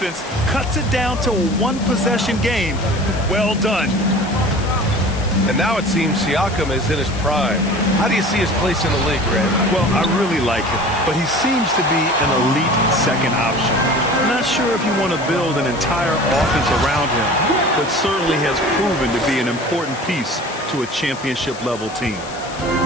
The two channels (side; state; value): left; noise; hiss, 15 dB below the sound